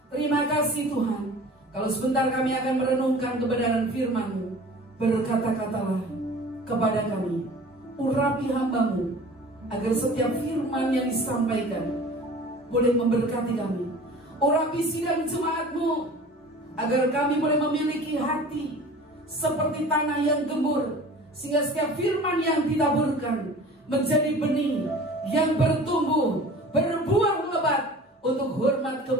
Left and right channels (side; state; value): both; normal; correlation 0.43